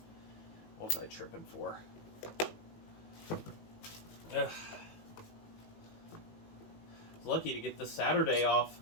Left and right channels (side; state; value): right; late; 18 ms